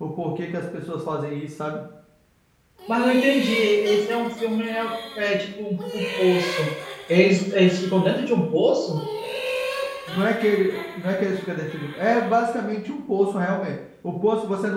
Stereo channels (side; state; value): both; identical; correlation 1.00